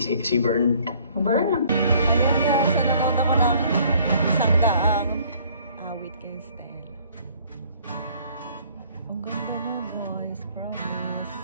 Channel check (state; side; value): inverted; both; correlation -0.58